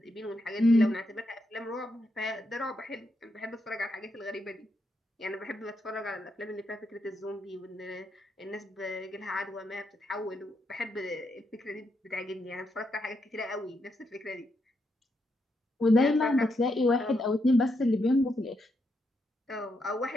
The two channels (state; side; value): normal; both; correlation 0.81